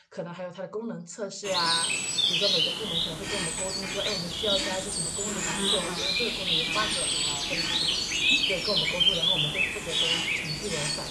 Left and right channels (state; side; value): identical; both; correlation 1.00